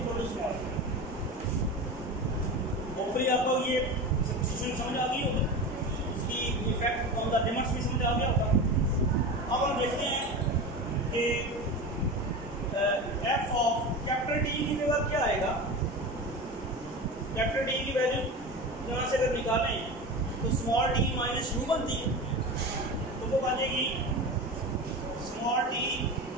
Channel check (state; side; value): normal; both; correlation 0.27